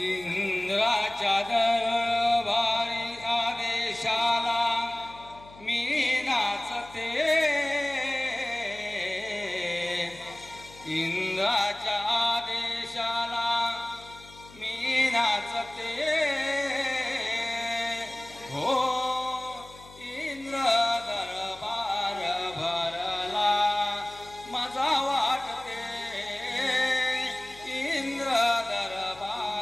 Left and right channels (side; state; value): left; noise; hum, 21 dB below the sound